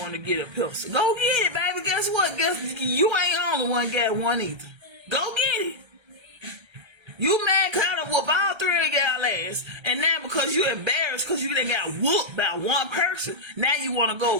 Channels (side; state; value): left; late; 1.3 ms